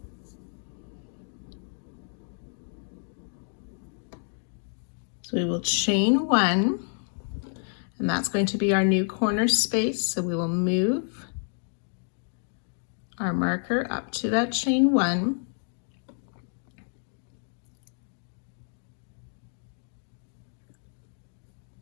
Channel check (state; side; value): silent; right; 58 dB below the other